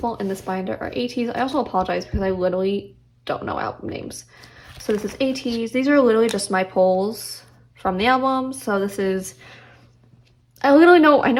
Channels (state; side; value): identical; both; correlation 1.00